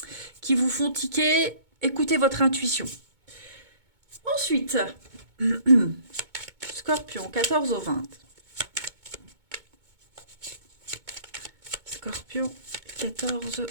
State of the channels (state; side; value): late; left; 2.2 ms